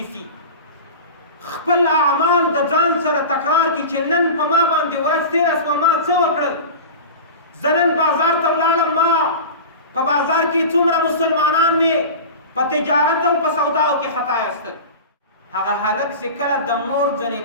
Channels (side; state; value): both; inverted; correlation -0.31